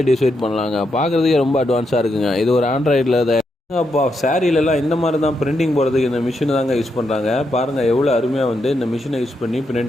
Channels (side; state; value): both; normal; correlation 0.82